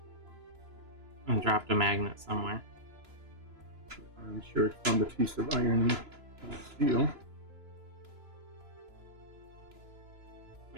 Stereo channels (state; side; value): late; left; 3.0 ms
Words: And dropped a magnet somewhere. I'm sure it found a piece of iron and steel.